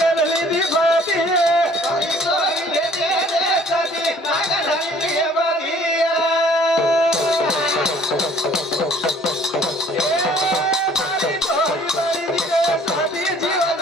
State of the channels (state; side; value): normal; both; correlation 0.55